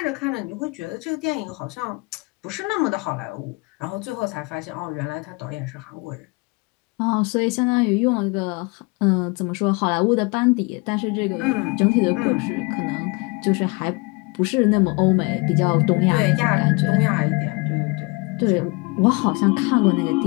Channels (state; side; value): quieter; right; 27.9 dB